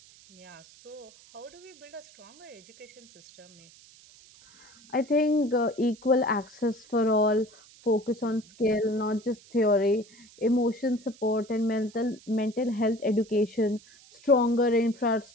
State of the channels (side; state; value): right; noise; hiss, 24 dB below the sound